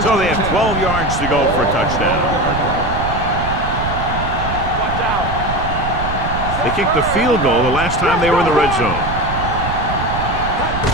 So they have 12 yards to go for a touchdown. Watch out. They kicked the field goal the last time they were in the red zone.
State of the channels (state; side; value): noise; right; rumble, 5 dB below the sound